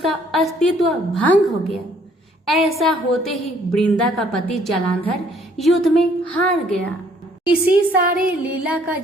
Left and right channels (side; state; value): both; normal; correlation 0.62